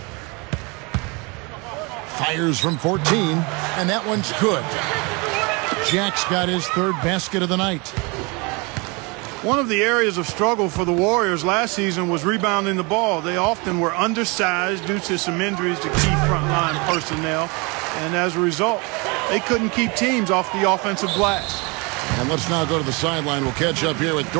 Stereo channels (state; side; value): quieter; left; 28.8 dB